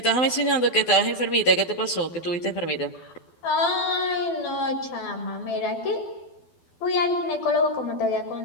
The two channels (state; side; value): late; right; 12 ms